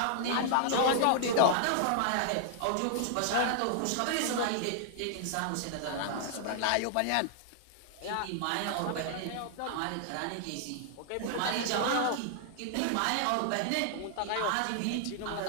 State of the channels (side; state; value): both; different; correlation -0.01